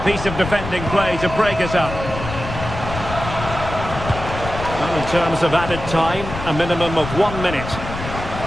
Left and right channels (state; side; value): noise; left; rumble, 8 dB below the sound